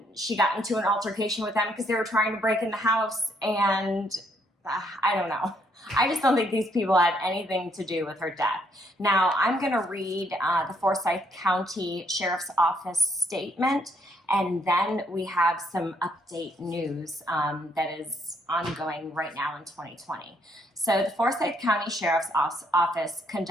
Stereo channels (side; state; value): both; normal; correlation 0.71